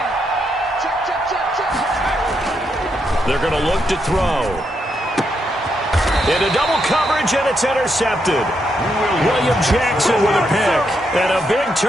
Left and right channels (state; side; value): normal; both; correlation 0.80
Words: They're going to look to throw. Into double coverage, and it's intercepted. William Jackson with a pick. And a big